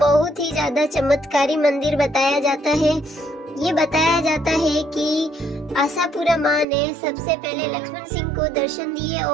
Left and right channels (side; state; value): left; drops out; at 6.7 s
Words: ही ज्यादा चमत्कारी मंदिर बताया जाता है। ये बताया जाता है कि आशापुरा माँ ने सबसे पहले लक्ष्मण सिंह को दर्शन दिए